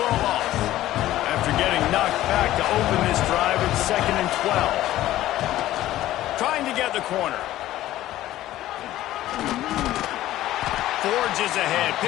a loss. After getting knocked back to open this drive, it's 2nd and 12. Trying to get the corner. Forges ahead,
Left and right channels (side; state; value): right; quieter; 14.5 dB